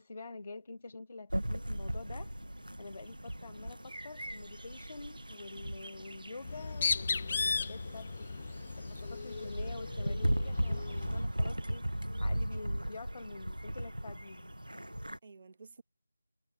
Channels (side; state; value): both; inverted; correlation -0.95